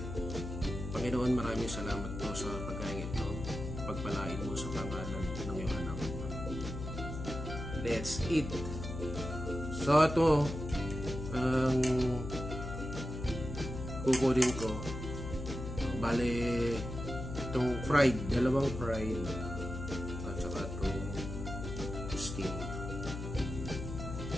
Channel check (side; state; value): left; noise; hum, 7 dB below the sound